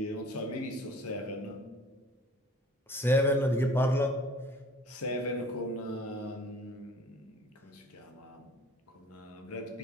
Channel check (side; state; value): both; normal; correlation 0.50